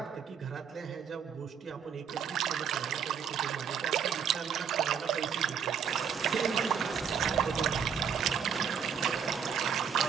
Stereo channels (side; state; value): left; quieter; 7.4 dB